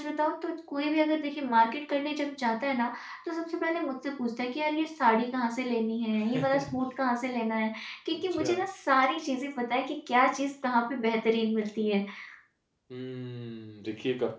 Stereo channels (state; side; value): identical; both; correlation 1.00